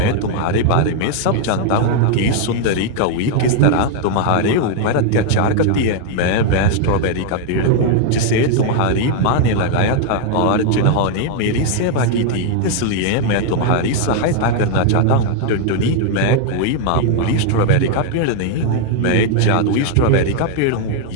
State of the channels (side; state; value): both; different; correlation 0.00